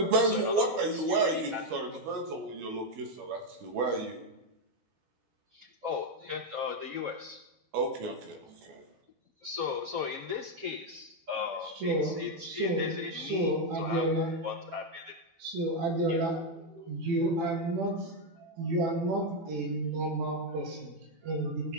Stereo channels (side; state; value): left; late; 12 ms